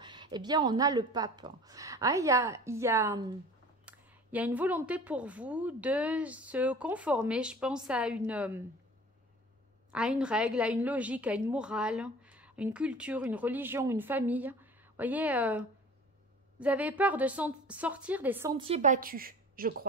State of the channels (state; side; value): normal; both; correlation 0.43